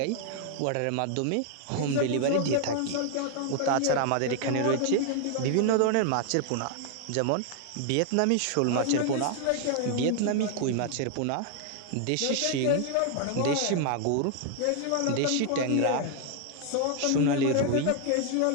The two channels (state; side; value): different; both; correlation 0.00